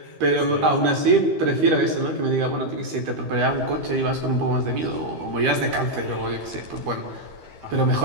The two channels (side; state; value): left; late; 13 ms